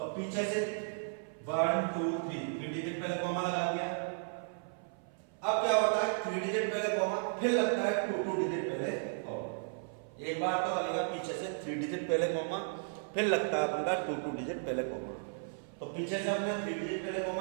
पीछे से 1 2 3 डिजिट पहले कॉमा लगा दिया। अब क्या होता है 3 डिजिट पहले कॉमा, फिर लगता है 2 डिजिट पहले कॉमा। एक बार तो लगेगा पीछे से 3 डिजिट पहले कॉमा, फिर लगता है अपन का 2 डिजिट पहले कॉमा। तो पीछे से हमने 3 डिजिट पहले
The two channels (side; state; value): left; silent; 55 dB below the other